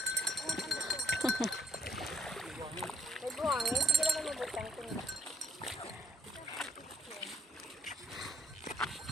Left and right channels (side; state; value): both; normal; correlation 0.66